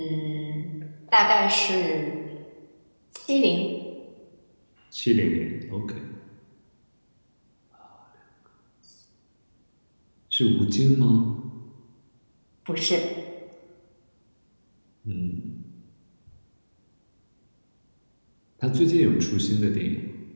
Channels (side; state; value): both; inverted; correlation -1.00